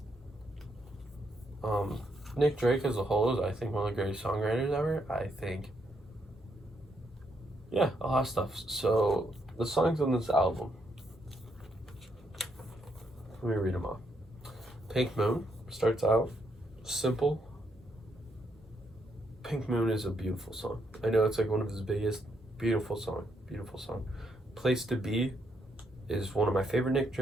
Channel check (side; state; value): both; normal; correlation 0.77